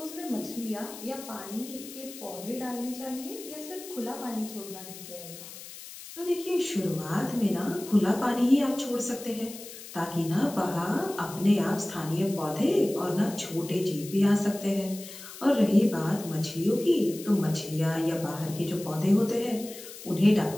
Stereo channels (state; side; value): noise; left; hiss, 14 dB below the sound